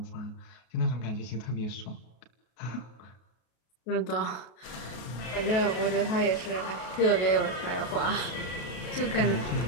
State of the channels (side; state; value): right; late; 33 ms